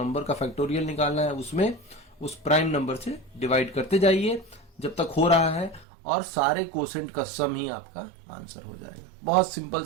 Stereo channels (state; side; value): drops out; left; at 5.9 s